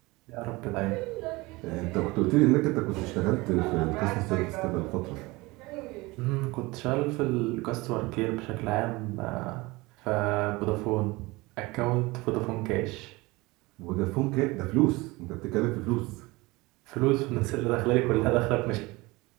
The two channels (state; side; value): quieter; left; 22.6 dB